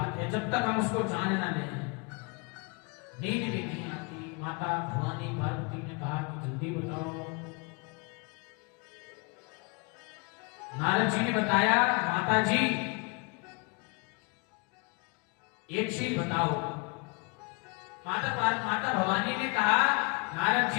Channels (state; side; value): quieter; right; 31.9 dB